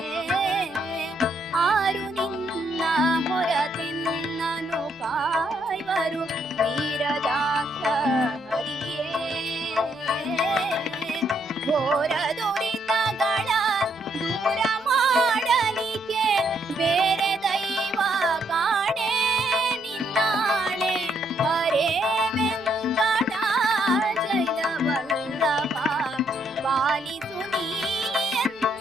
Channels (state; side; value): noise; left; rumble, 30 dB below the sound